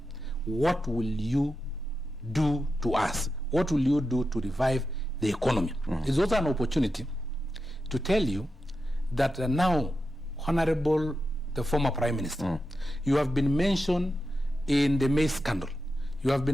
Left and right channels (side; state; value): both; normal; correlation 0.89